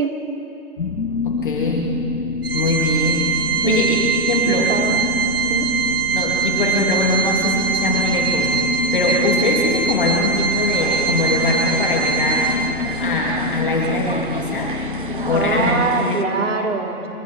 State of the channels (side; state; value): both; normal; correlation 0.08